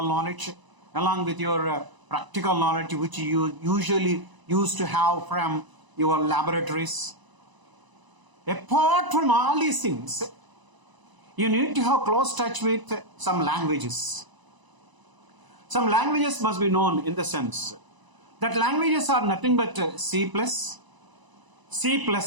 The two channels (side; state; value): left; late; 1.0 ms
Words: knowledge, along with your practical knowledge which you usually used to have from your laboratories. Apart from all these things, you need to have close touch with some languages. Some languages must be known in the sense that languages are nothing but C++, C